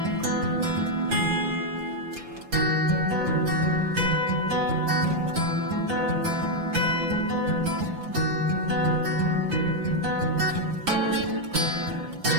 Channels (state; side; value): late; left; 5.7 ms